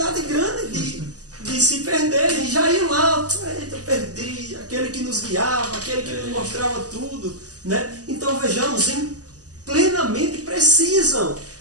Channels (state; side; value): late; left; 0.67 ms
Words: grande de se perderem. Já iam lá, eita, perdi. Aquele que nos guiava, aquele que nos mostrava tudo, né? Então vejamos, plenamente precisam